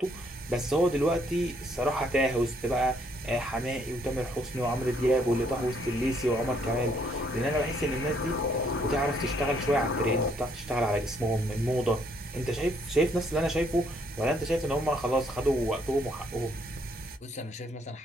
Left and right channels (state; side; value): normal; both; correlation 0.69